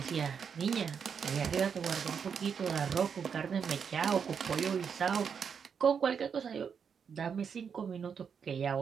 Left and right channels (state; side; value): quieter; left; 6.8 dB